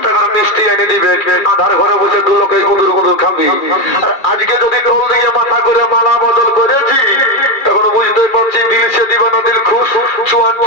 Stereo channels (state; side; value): late; right; 2.3 ms